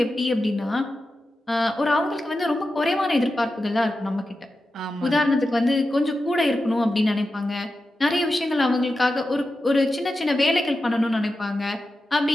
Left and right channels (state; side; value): normal; both; correlation 0.91